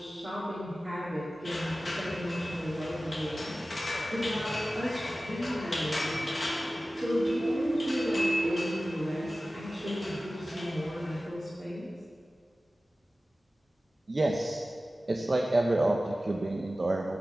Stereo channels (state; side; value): normal; both; correlation 0.96